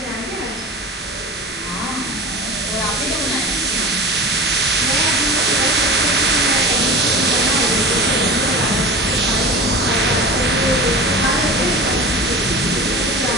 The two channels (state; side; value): normal; both; correlation 0.34